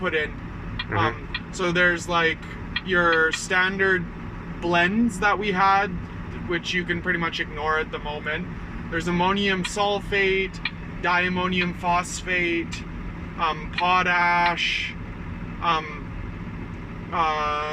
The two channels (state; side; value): identical; both; correlation 1.00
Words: in. So there's like your standard blends that we had, which you can pretty much ignore at the moment. There's ammonium sulfate, diammonium phosphate, potash,